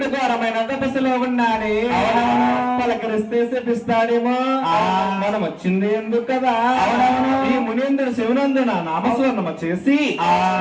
పలకరిస్తే శపిస్తాడేమో. మనం వచ్చింది ఎందుకు కదా. ఈ మునీంద్రుడు శివనందున నామస్వర్ణమ చేసి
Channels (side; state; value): both; identical; correlation 1.00